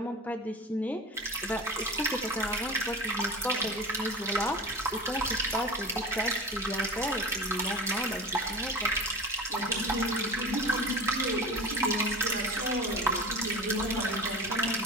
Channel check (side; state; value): both; normal; correlation 0.33